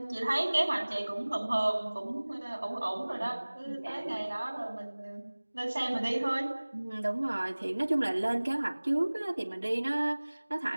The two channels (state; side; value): inverted; both; correlation -1.00